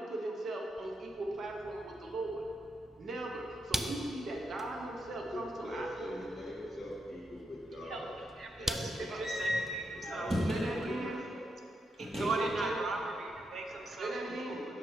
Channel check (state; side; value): normal; both; correlation 0.83